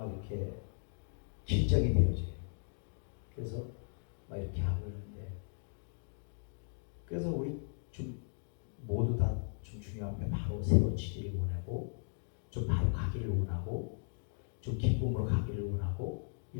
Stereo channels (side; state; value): right; silent; digital silence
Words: 이렇게 긴장이 되어져요. 그래서 막 이렇게 하고 있는데, 그래서 우리 좀 모두 다 좀 중요한 게 바로 세워지기를 원하고, 좀 바로 가기를 원하고, 좀 기쁨으로 가기를 원하고,